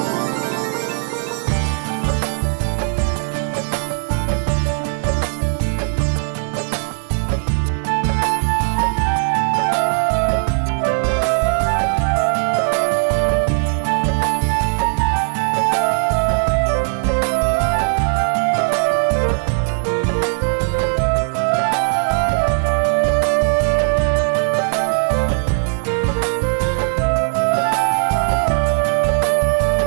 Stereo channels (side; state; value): left; silent; digital silence